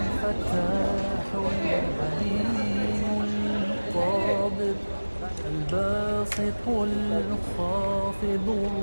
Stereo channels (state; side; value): inverted; both; correlation -1.00